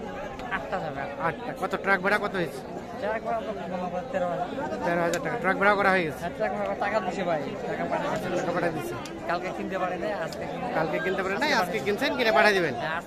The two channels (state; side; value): identical; both; correlation 1.00